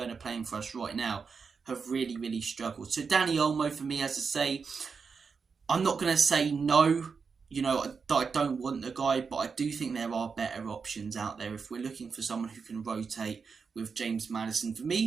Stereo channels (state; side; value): quieter; left; 5.4 dB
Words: playing for us right now, have really, really struggled. So Dani Olmo, for me, as I say, I'm not going to say no, you know, I don't want the guy, but I do think there are better options out there if we're looking for someone who can rotate with James Maddison. For